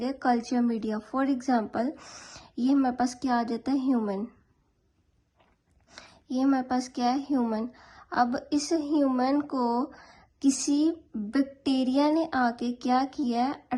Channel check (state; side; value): identical; both; correlation 1.00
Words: कल्चर मीडिया। फॉर एग्जांपल ये हमारे पास क्या आ जाता है, ह्यूमन। ये हमारे पास क्या है, ह्यूमन। अब इस ह्यूमन को किसी बैक्टीरिया ने आके क्या किया है,